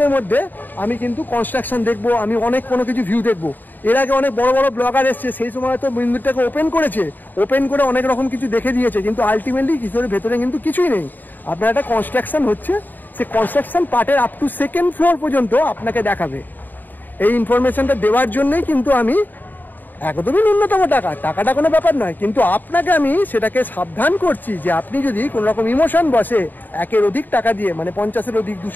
মধ্যে আমি কিন্তু কনস্ট্রাকশন দেখবো, আমি অনেক কোনো কিছু ভিউ দেখবো। এর আগে অনেক বড় বড় ব্লগার এসছে, সেই সময় তো মন্দিরটাকে ওপেন করেছে, ওপেন করে অনেক রকম কিছু দেখে দিয়েছে, কিন্তু আলটিমেটলি কিছুর ভেতরে কিন্তু কিছুই নেই। আপনার একটা কনস্ট্রাকশন হচ্ছে, সে কনস্ট্রাকশন পার্টের আপ টু সেকেন্ড ফ্লোর পর্যন্ত আপনাকে দেখাবে। এই ইনফরমেশনটা দেওয়ার জন্যই কিন্তু আমি একদমই ন্যূনতম টাকাটা কোনো ব্যাপার নয়, কিন্তু আপনাকে আমি সেটাকে সাবধান করছি যে আপনি যদি কোনো রকম ইমোশন বসে একের অধিক টাকা দিয়ে মানে 50-এর অধিক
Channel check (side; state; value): right; late; 0.089 ms